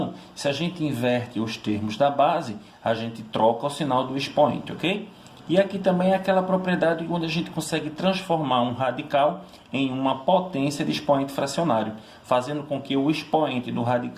se a gente inverte os termos da base, a gente troca o sinal do expoente, ok? E aqui também é aquela propriedade onde a gente consegue transformar um radical em uma potência de expoente fracionário, fazendo com que o expoente do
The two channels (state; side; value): identical; both; correlation 1.00